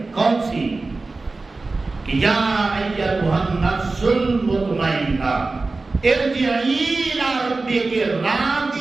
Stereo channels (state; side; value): quieter; left; 3.6 dB